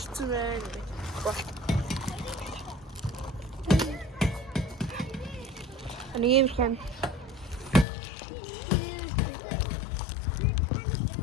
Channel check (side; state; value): right; drops out; at 7.9 s